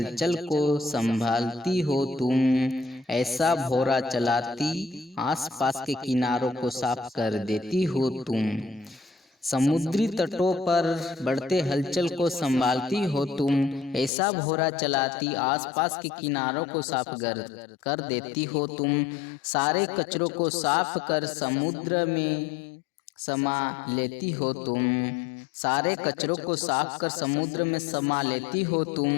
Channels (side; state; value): right; drops out; at 14.1 s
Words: को संभालती हो तुम, ऐसा भौरा चलाती आसपास के किनारों को साफ कर देती हो तुम। समुद्री तटों पर बढ़ते हलचल को संभालती हो तुम, ऐसा भौरा चलाती आसपास के किनारों को साफ कर देती हो तुम। सारे कचरों को साफ कर समुद्र में समा लेती हो तुम। सारे कचरों को साफ कर समुद्र में समा लेती हो